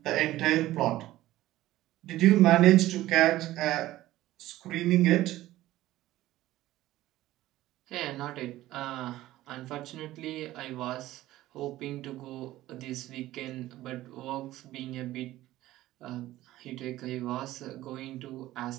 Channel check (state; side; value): quieter; left; 15.7 dB